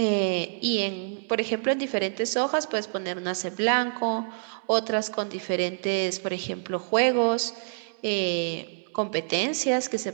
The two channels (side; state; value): left; silent; 60 dB below the other